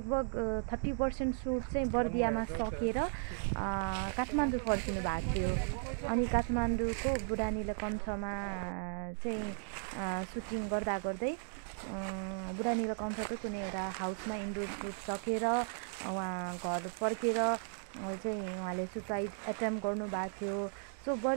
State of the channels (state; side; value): silent; left; digital silence